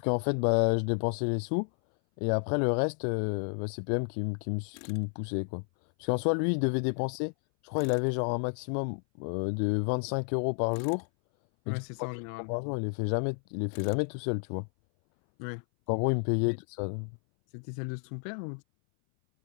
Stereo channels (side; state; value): right; silent; 57 dB below the other